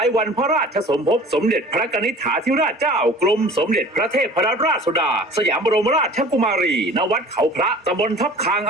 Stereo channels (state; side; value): normal; both; correlation 0.45